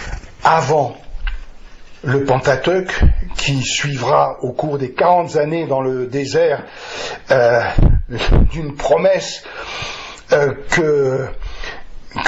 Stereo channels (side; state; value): both; identical; correlation 1.00